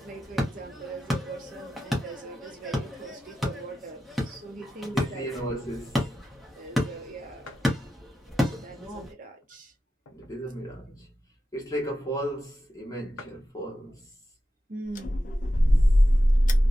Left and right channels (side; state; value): both; normal; correlation 0.91